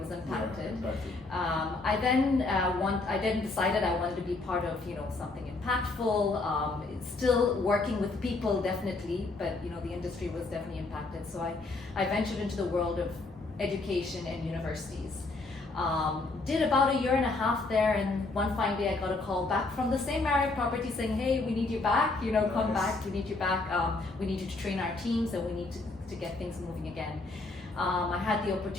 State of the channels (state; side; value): quieter; right; 3.4 dB